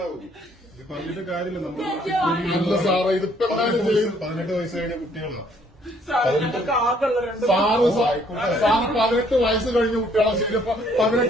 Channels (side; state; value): both; normal; correlation 0.64